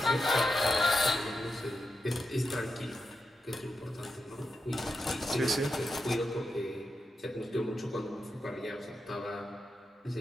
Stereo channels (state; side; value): normal; both; correlation 0.87